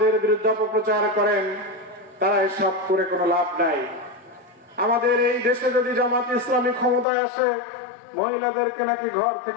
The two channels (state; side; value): drops out; right; at 7.1 s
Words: বিরুদ্ধে অপপ্রচার করেন, তারা এসব করে কোনো লাভ নাই। আমাদের এই দেশে যদি জামাত ইসলামী ক্ষমতায় আসে, মহিলাদেরকে নাকি ঘর